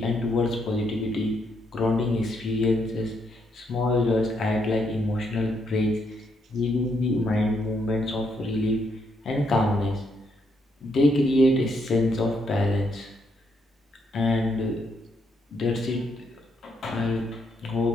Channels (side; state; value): both; normal; correlation 0.76